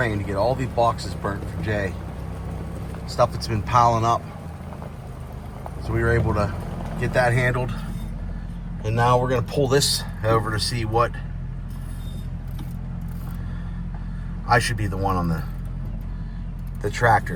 to get all these boxes burnt for Jay. Stuff that's been piling up. So we were able to get that handled. And now we're gonna pull this over to see what I should be the one on the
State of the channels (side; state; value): both; identical; correlation 1.00